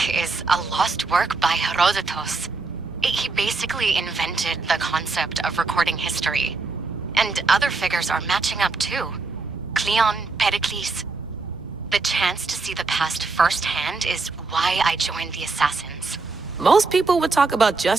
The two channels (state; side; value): quieter; left; 3.9 dB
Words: is a lost work by Herodotus. He basically invented the concept of recording history. And other figures are matching up too. Cleon, Pericles. The chance to see the past firsthand is why I joined the Assassins. Most people would talk about